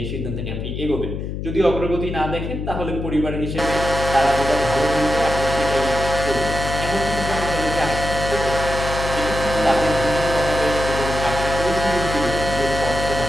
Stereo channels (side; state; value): left; noise; hum, 5 dB below the sound